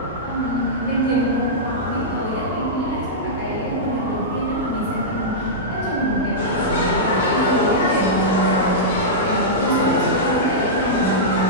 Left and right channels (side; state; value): both; normal; correlation -0.12